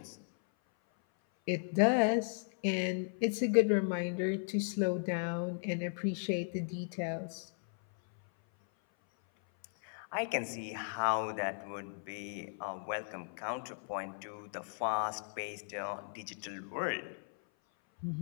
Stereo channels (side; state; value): right; silent; 54 dB below the other